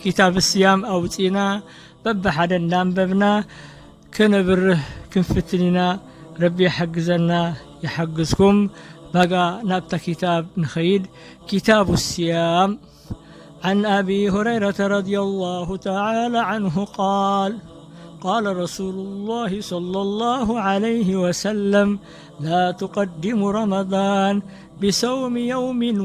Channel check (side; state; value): both; identical; correlation 1.00